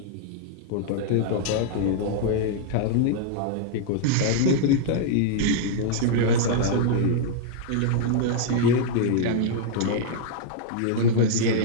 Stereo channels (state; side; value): different; both; correlation -0.01